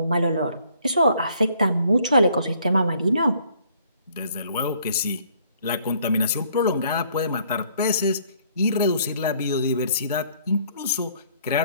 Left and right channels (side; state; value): both; inverted; correlation -0.62